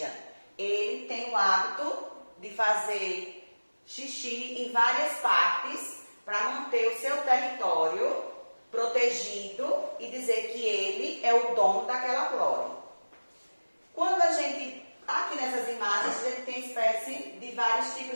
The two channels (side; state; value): both; inverted; correlation -1.00